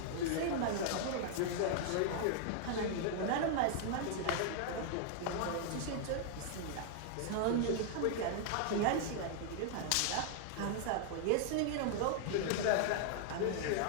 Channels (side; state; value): both; different; correlation 0.00